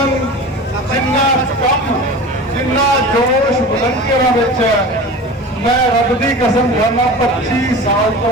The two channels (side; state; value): both; normal; correlation 0.34